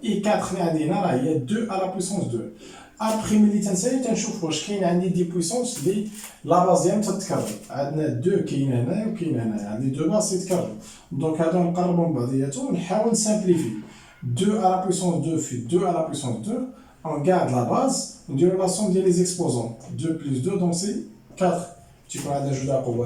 اي 4 اللي عندي هنا راه هي 2 على بويسونس 2. ابخي ملي تنسالي تنشوف واش كاين عندي دي بويسونس اللي لا باز ديالهم تتكرر. عندنا 2 كاين هنايا وكاين هنايا، عندي 2 باز يتكرروا. دونك هادو نقربهم من بعضياتهم ونحاول نسامبليفي. 2 على بويسونس 2 في 2 على بويسونس 2 on garde la base نديرو لا سوم ديال لي زيكسبوزون 2 بلس 2 دونك سي 4. تيكون عندنا جوج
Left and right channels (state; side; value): identical; both; correlation 1.00